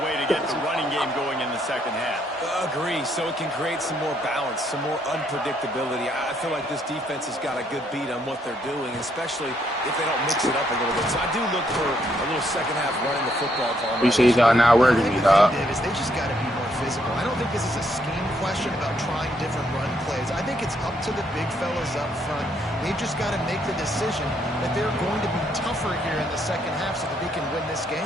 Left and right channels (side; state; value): both; normal; correlation 0.72